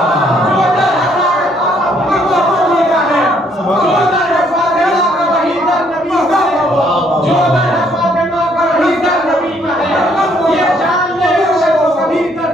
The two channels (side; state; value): both; normal; correlation 0.67